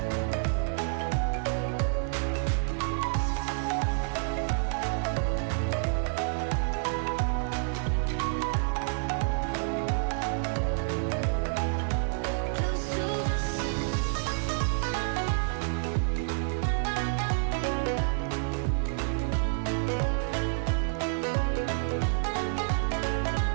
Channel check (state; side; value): silent; left; 59 dB below the other